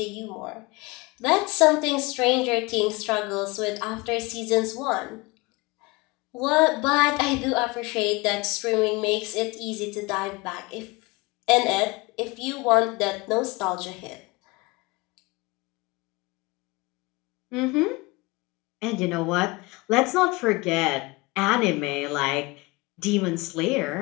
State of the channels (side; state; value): right; quieter; 24.5 dB